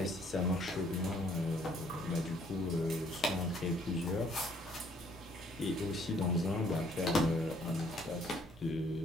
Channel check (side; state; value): both; normal; correlation 0.63